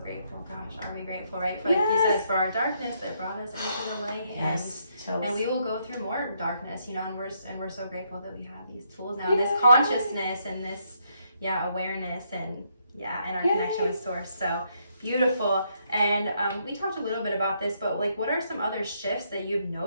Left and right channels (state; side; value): inverted; both; correlation -0.74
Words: Gosh, are we grateful, right? For like you said, for our darkness that brought us into the light. And we will go through more darkness, you know, and we're so grateful that we have these tools now, this consciousness and this awareness and our connection with source. So beautiful. And we talked a little bit about this, but like what are some other shifts that you've